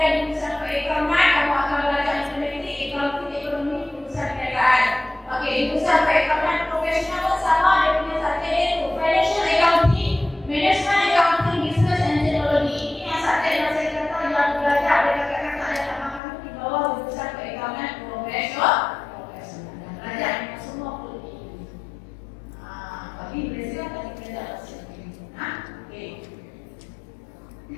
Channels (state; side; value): drops out; right; at 16.2 s